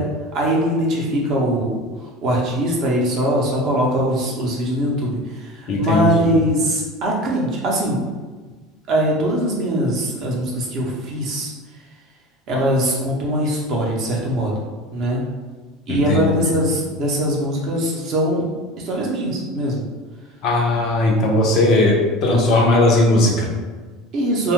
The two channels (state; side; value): normal; both; correlation 0.35